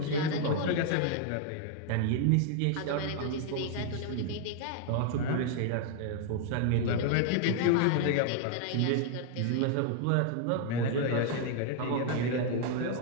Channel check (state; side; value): different; both; correlation 0.00